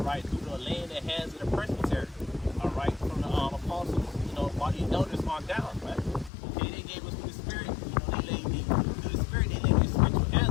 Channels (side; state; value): right; drops out; at 6.3 s